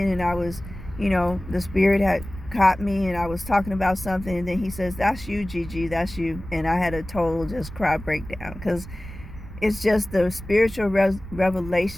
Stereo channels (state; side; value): noise; right; rumble, 13 dB below the sound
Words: and I was, you know, the spirit had caught me and I was talking about something, and then he says, that's you, Gigi, that's you. And I had a total just cry breakdown, because it's just the spiritual